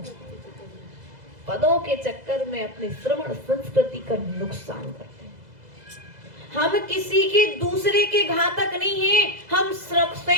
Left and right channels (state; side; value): late; left; 2.0 ms